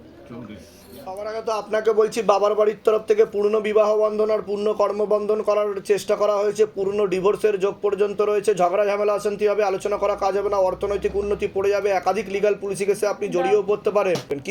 সবার আগে তো আপনাকে বলছি, বাবার বাড়ির তরফ থেকে পূর্ণ বিবাহ বন্ধন আর পূর্ণ কর্মবন্ধন করার চেষ্টা করা হয়েছে, পূর্ণ ডিভোর্সের যোগ পর্যন্ত রয়েছে। ঝগড়া ঝামেলা অশান্তি হবে, আলোচনা করা কাজ হবে না, অর্থনৈতিক উন্নতি পড়ে যাবে, একাধিক লিগাল পুলিশি কেসে আপনি জড়িয়েও পড়তে পারেন।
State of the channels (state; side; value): identical; both; correlation 1.00